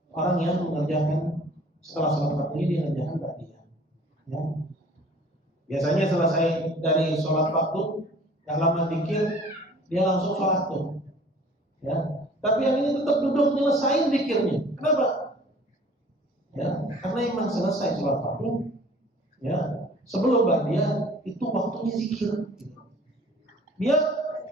orang yang mengerjakan setelah sholat fardunya dia mengerjakan ba'diyah, ya. Biasanya selesai dari sholat fardu, gak lama dikir dia langsung sholat tuh, ya. Tapi yang ini tetap duduk nyelesain dikirnya. Kenapa? Ya, karena emang selesai sholat fardu, ya. Sebelum ba'diyah itu waktunya zikir. Dia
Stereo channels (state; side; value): normal; both; correlation 0.51